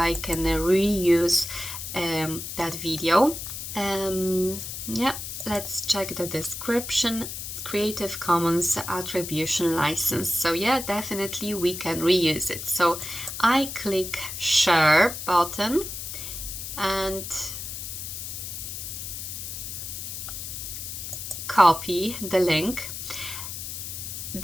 can reuse that video. Let's check the description. Creative Commons attribution license. So yeah, definitely we can reuse it. So I click share button and copy the link.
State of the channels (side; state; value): left; noise; hiss, 7 dB below the sound